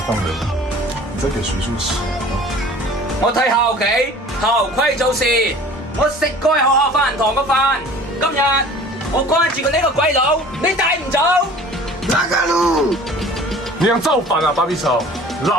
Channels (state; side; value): normal; both; correlation 0.46